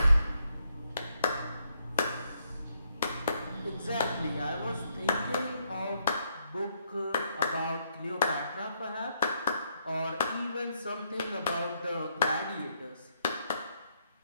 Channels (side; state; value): both; inverted; correlation -0.76